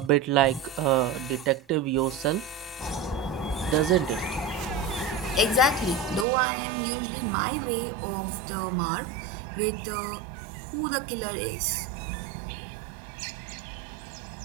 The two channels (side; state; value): left; drops out; at 6.2 s